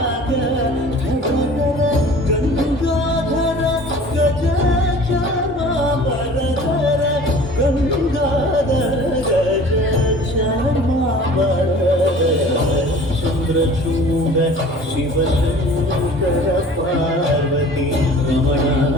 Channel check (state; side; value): normal; both; correlation 0.45